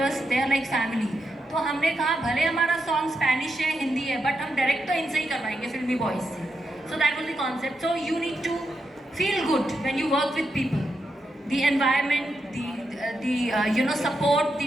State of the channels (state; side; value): normal; both; correlation 0.84